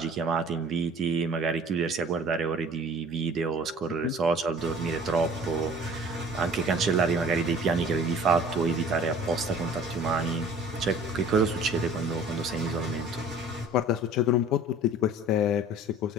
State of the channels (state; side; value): normal; both; correlation 0.48